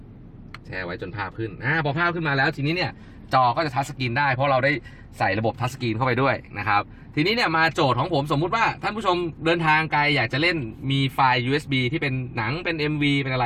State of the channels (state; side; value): identical; both; correlation 1.00